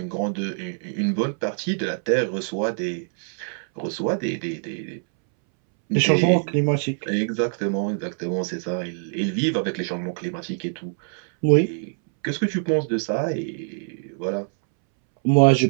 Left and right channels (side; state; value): left; silent; 62 dB below the other